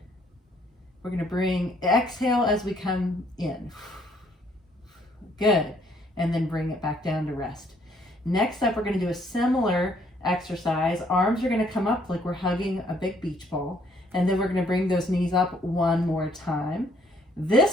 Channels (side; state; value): both; normal; correlation 0.66